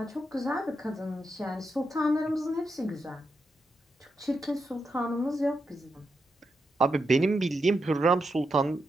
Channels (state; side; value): normal; both; correlation 0.85